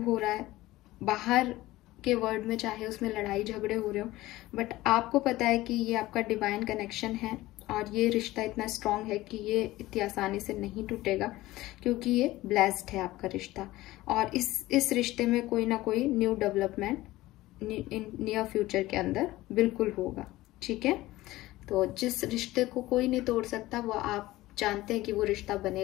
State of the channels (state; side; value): quieter; right; 17.6 dB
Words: हो रहा है। बाहर के वर्ल्ड में चाहे उसमें लड़ाई झगड़े हो रहे हो, बट आपको पता है कि ये आपका डिवाइन कनेक्शन है और ये रिश्ता इतना स्ट्रांग है कि ये इतनी आसानी से नहीं टूटेगा, क्योंकि ये ब्लेस्ड है आपका रिश्ता। और इस रिश्ते में कोई ना कोई न्यू डेवलपमेंट नियर फ्यूचर के अंदर बिल्कुल होगा, ठीक है। तो जिस रिश्ते को कोई नहीं तोड़ सकता, वो आप जानते हैं कि वो रिश्ता